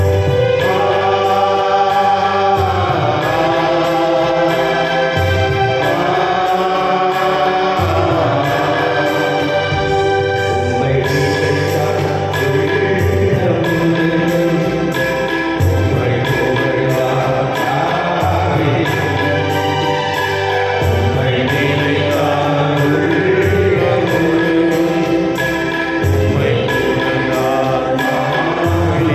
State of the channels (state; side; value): identical; both; correlation 1.00